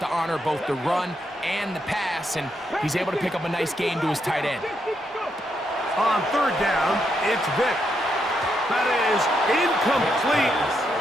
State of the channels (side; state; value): both; normal; correlation 0.80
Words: to honor both the run and the pass, and he's able to pick up a nice gain to his tight end. On 3rd down, it's Vic. That is incomplete.